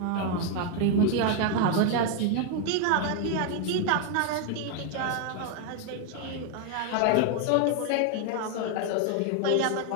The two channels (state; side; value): different; both; correlation 0.01